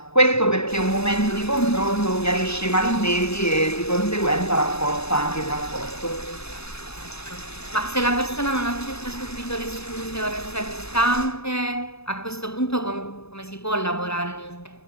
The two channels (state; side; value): late; right; 0.79 ms